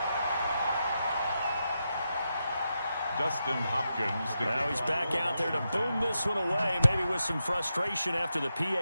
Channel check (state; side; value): inverted; both; correlation -0.87